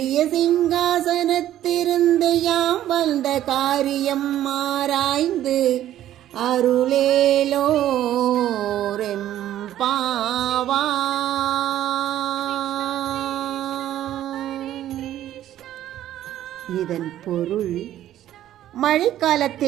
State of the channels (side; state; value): left; quieter; 12.5 dB